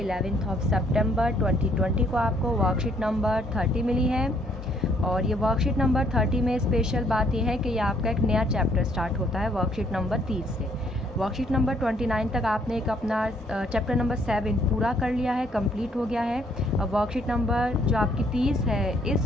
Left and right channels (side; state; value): both; normal; correlation 0.66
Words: of सितंबर 2020 को आपको वर्कशीट नंबर 30 मिली है। और ये वर्कशीट नंबर 30 में स्पेशल बात यह है कि ये आपका एक नया चैप्टर स्टार्ट होता है वर्कशीट नंबर 30 से। वर्कशीट नंबर 29 तक आपने एक अपना चैप्टर नंबर 7 पूरा कर लिया है, कंप्लीट हो गया है। अब वर्कशीट नंबर जो आपकी 30 है,